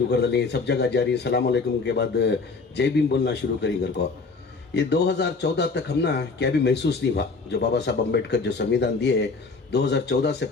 कर दिली, सब जगह जारी सलाम अलैकुम के बाद जय भीम बोलना शुरू करी घर को। ये 2014 तक हम ना क्या भी महसूस नहीं हुआ, जो बाबा साहब अम्बेडकर जो संविधान दिए 2014 से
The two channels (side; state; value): right; quieter; 4.2 dB